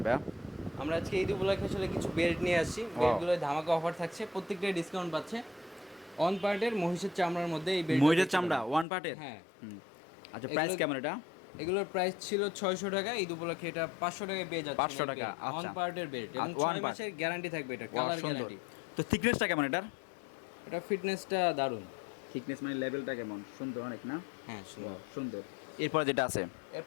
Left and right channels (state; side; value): drops out; right; at 8.8 s